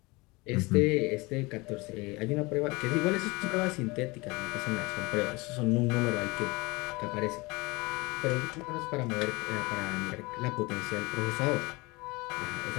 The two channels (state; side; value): quieter; right; 24.6 dB